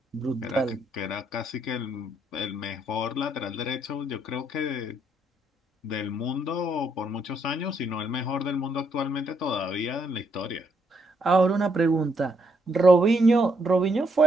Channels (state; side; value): normal; both; correlation 0.74